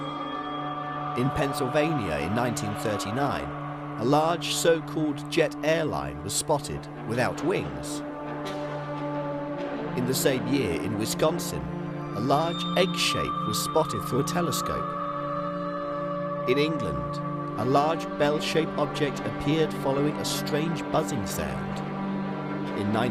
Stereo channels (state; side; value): identical; both; correlation 1.00